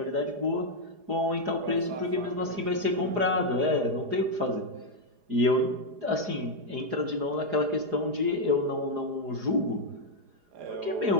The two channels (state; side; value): late; left; 4.8 ms